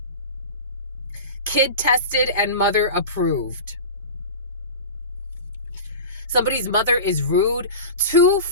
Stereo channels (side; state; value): both; inverted; correlation -0.30